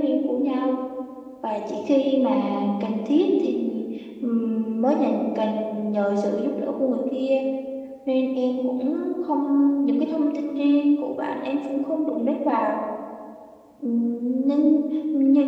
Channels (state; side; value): identical; both; correlation 1.00